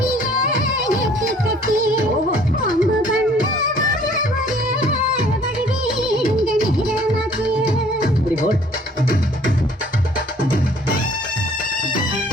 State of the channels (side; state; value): both; normal; correlation 0.56